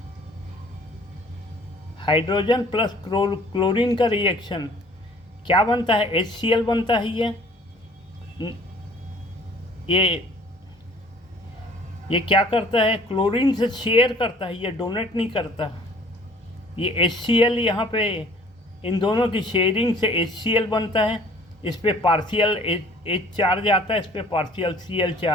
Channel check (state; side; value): normal; both; correlation 0.53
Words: प्लस क्लोरीन का रिएक्शन क्या बनता है, HCl बनता है। ये क्या करता है, क्लोरीन से शेयर करता है, ये डोनेट नहीं करता। ये HCl यहाँ पे इन दोनों की शेयरिंग से HCl बनता है। इस पे पार्शियल H चार्ज आता है, इस पे पार्शियल Cl